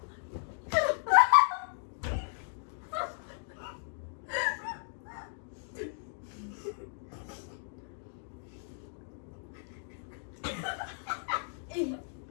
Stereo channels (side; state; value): right; silent; digital silence